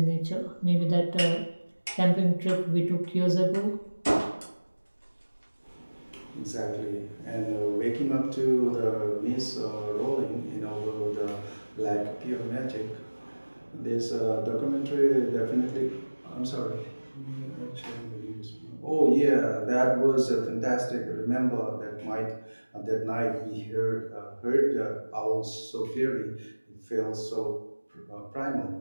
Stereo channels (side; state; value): both; inverted; correlation -1.00